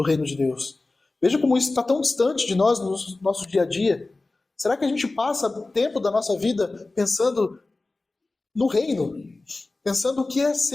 reino de Deus. Veja como isso está tão distante de nós no nosso dia a dia. Será que a gente passa tempo da nossa vida pensando no reino? Pensando o que é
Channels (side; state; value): right; quieter; 3.3 dB